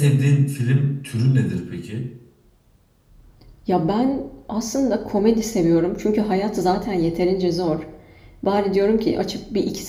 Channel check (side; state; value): both; identical; correlation 1.00